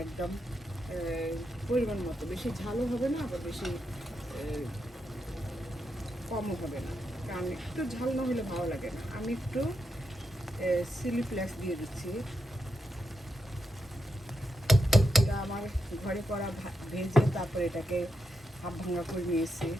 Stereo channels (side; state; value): both; normal; correlation 0.85